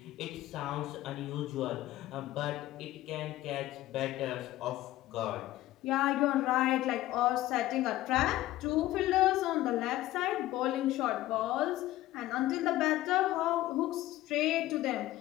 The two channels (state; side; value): quieter; right; 15.7 dB